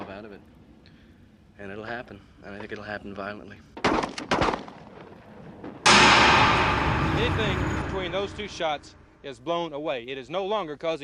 out of it. And it'll happen. And I think it'll happen violently. Anything between those two shots is blown away. It is no longer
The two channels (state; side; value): identical; both; correlation 1.00